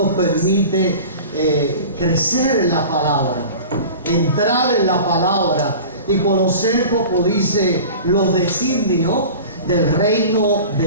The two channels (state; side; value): inverted; both; correlation -0.38